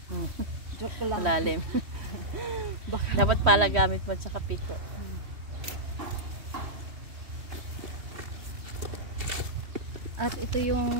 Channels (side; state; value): left; late; 3.1 ms